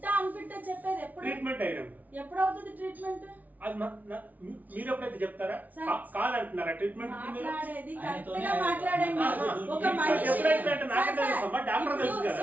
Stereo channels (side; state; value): left; late; 0.076 ms